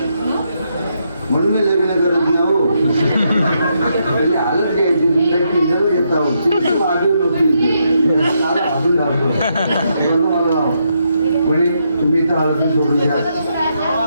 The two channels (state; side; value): inverted; both; correlation -0.79